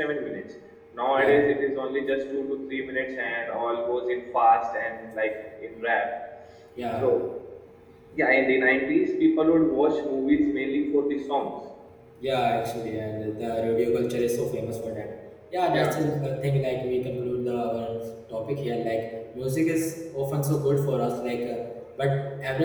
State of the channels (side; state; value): both; identical; correlation 1.00